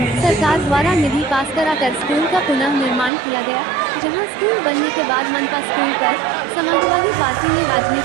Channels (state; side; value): drops out; left; at 3.1 s